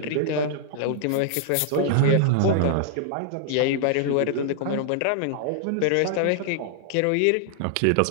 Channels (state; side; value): different; both; correlation -0.01